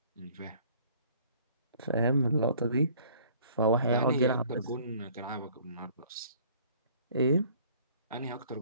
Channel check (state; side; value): inverted; both; correlation -0.55